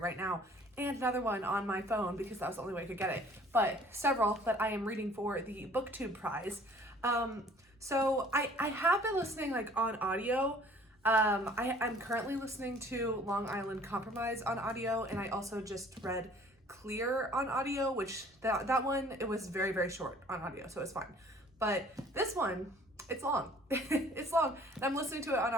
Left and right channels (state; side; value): normal; both; correlation 0.53